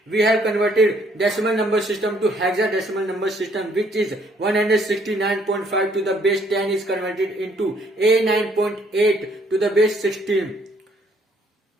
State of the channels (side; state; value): both; normal; correlation 0.65